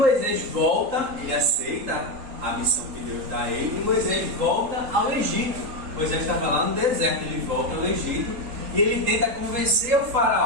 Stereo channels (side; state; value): left; late; 3.8 ms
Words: volta, ele aceita a missão que Deus dá a ele, e Moisés volta ao Egito. Moisés estava lá no deserto, ele volta ao Egito e ele tenta convencer o